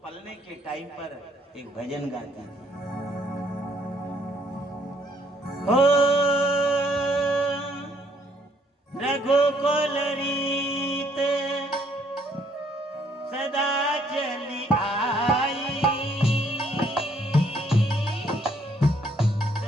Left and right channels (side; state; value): both; normal; correlation 0.67